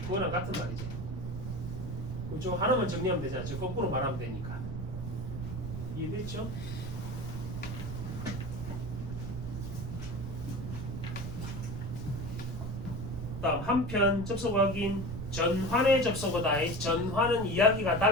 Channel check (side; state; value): right; noise; rumble, 6 dB below the sound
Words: 그거랑 같은 말이지. 그쪽 하나만 정리하면 되잖아. 저 거꾸로 말하면 되니까. 이해됐죠? 다음 한편 접속 확인. 전환의 접속어다. 전환은 이야기가